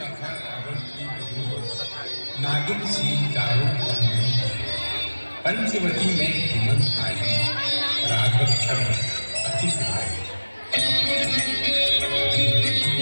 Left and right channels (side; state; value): both; inverted; correlation -1.00